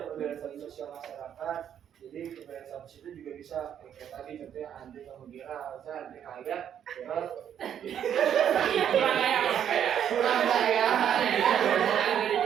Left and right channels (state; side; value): quieter; left; 9.3 dB